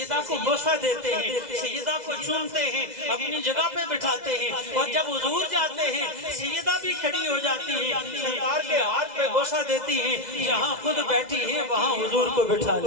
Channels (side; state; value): left; late; 2.0 ms